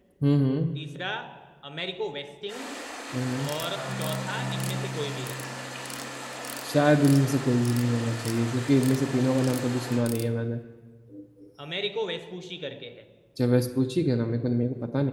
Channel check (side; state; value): both; identical; correlation 1.00